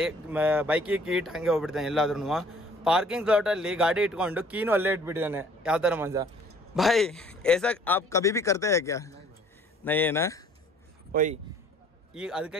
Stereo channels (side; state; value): both; normal; correlation 0.56